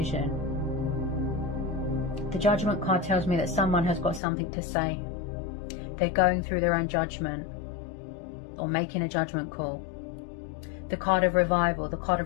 The Judgment card tells me that someone has got something to say. They're going through their own judgment or making a judgment call. The card of revival, the card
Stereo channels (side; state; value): right; drops out; at 4.2 s